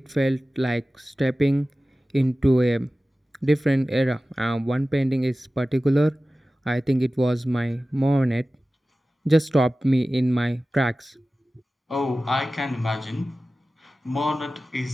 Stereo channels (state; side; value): normal; both; correlation 0.96